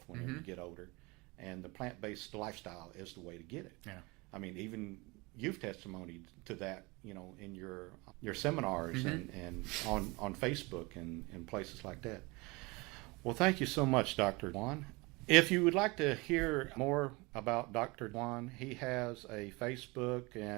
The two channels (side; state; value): left; quieter; 25.3 dB